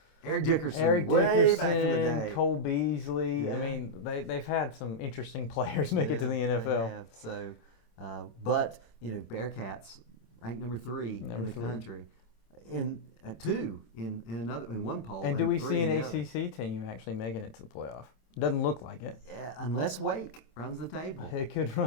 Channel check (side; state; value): right; late; 27 ms